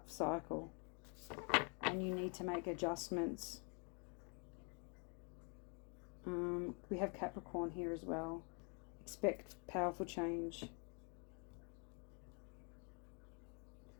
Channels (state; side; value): quieter; right; 37.0 dB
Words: cycle and you need to make adjustments. We have Capricorn here as well. Expect powerful change.